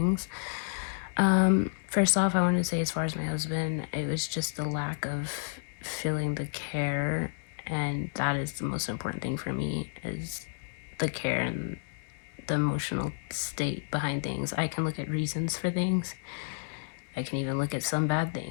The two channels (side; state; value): right; silent; digital silence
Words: First off, I wanted to say as far as my husband, it was just the lack of feeling the care, and that is the most important thing for me is the care and the emotional state behind things. I can look at reasons for things. I can even look at some bad